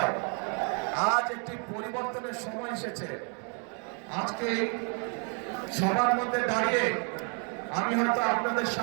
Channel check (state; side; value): quieter; left; 39.6 dB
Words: আজ একটি পরিবর্তনের সময় এসেছে। আজকে সবার মধ্যে দাঁড়িয়ে আমি হয়তো আপনাদের